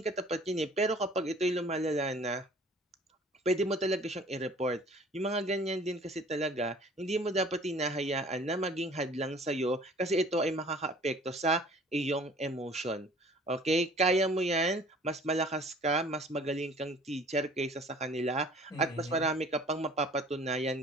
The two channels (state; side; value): normal; both; correlation 0.50